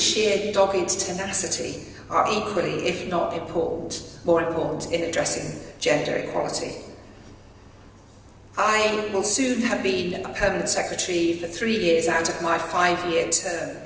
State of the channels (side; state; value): both; identical; correlation 1.00